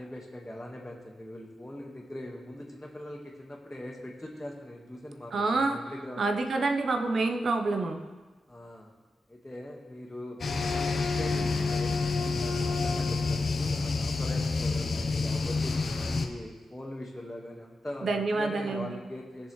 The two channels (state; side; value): normal; both; correlation 0.87